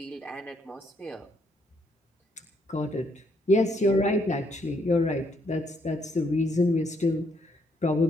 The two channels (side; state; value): both; normal; correlation 0.72